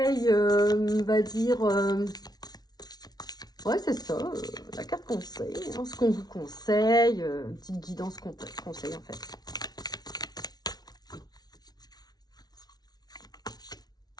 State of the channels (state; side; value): late; right; 0.19 ms